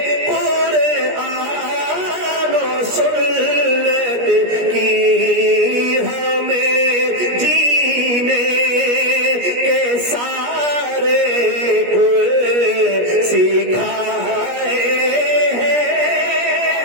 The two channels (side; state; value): left; late; 17 ms